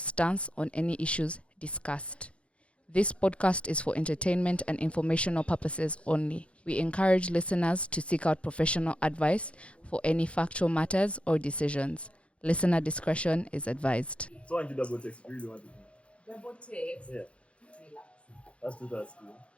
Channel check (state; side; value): late; right; 0.061 ms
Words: on any issues discussed. This podcast is for entertainment and informational purposes only. We encourage listeners to seek out professional advice for any factual matters or decisions. Listener discretion is advised. So I want you double text. You really want to do. Double text. Yeah. Relax. That's too that's cool.